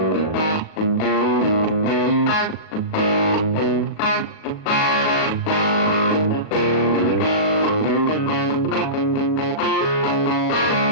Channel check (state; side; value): late; right; 37 ms